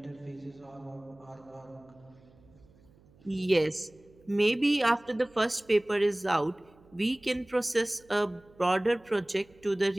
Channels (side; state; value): right; noise; hum, 28 dB below the sound